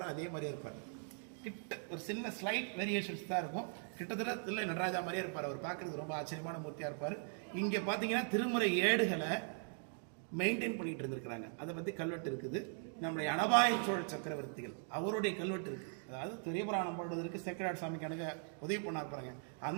அதே மாதிரியே இருப்பார். கிட்ட ஒரு சின்ன ஸ்லைட் வேரியேஷன்ஸ் தான் இருக்கும். கிட்டத்தட்ட இல்லை நடராஜா மாதிரியே இருப்பார். அவர் பார்க்கறதுக்கு ரொம்ப ஆச்சரியமான மூர்த்தியாக இருப்பார். இங்கே பார்த்தீங்கன்னா திருமுறை ஏடுகளை மெயின்டைன் பண்ணிட்டு இருந்திருக்கிறாங்க. அதை பற்றி கல்வெட்டு இருக்குது. நம்முடைய அனபாய சோழ சக்கரவர்த்திகள் அவருடைய கல்வெட்டு இருக்கு. அதாவது பெரிய புராணம் பாடுவதற்கு சேக்கராட் சாமிக்கு எனக்கு உதவி பண்ணா இருப்பாங்க.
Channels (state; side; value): silent; left; 51 dB below the other